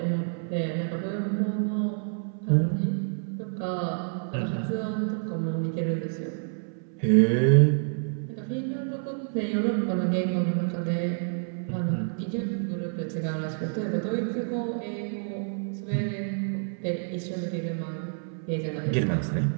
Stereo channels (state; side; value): silent; left; 59 dB below the other